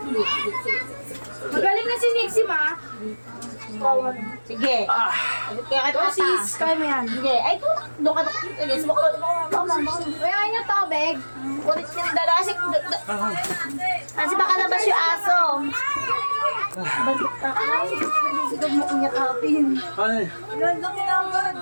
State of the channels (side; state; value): both; inverted; correlation -1.00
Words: Magaling na si Nixie, ma. Sige. Ah! Kaya ka tata. Sis, kaya mo yan. Sige. Ay, doon ka na. Sige, sumakot. Kaya niyo tubig. Kulit yung dalawa. Kasi baka labas yung aso. Balik ka. Ay, sige mo kunyakapin. Ano eh?